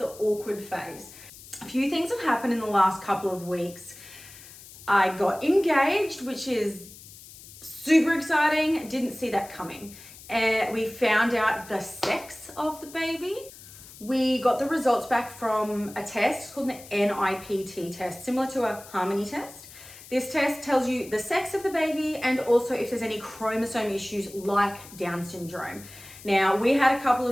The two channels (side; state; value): left; noise; hiss, 18 dB below the sound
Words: awkward phase. A few things have happened in the last couple of weeks. I got engaged, which is super exciting. Didn't see that coming. We found out the sex of the baby. We got the results back from a test called the NIPT test, similar to a Harmony test. This test tells you the sex of the baby and also if there's any chromosome issues like Down syndrome. Now, we had a couple